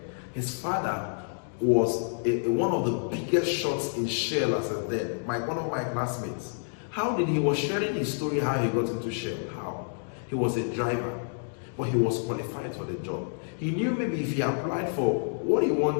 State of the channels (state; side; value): silent; right; digital silence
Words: his father was one of the biggest shots in Shell as a then, one of my classmates. How did he was sharing his story how he got into Shell? How? He was a driver, but he was qualified for the job. He knew maybe if he applied for what he